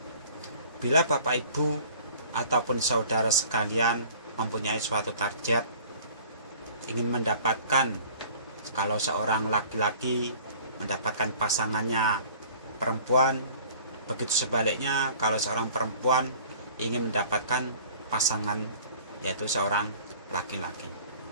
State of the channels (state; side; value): inverted; both; correlation -0.49